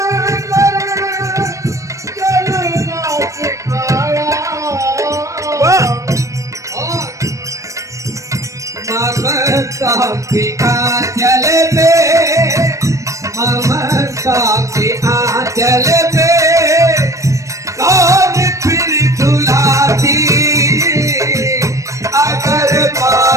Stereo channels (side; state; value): left; late; 0.15 ms